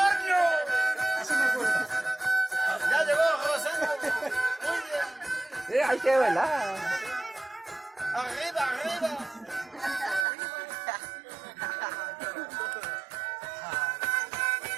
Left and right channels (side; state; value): left; drops out; at 10.2 s